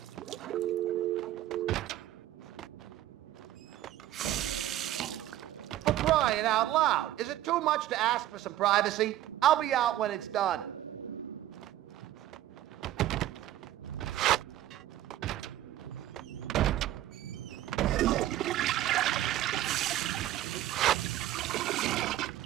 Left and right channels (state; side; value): quieter; left; 13.7 dB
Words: For crying out loud, is it too much to ask for some privacy? I'll be out when it's done.